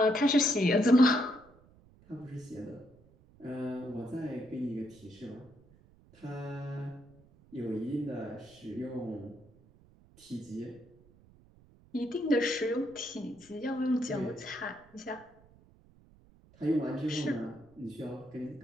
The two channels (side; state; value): right; noise; rumble, 27 dB below the sound